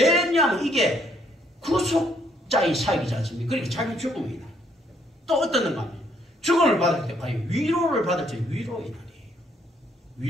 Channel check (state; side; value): normal; both; correlation 0.69